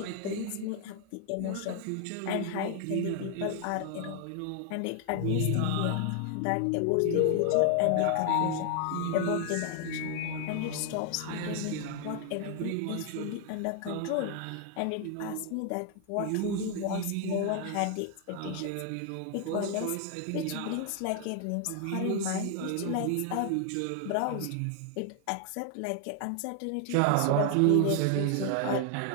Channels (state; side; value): different; both; correlation 0.00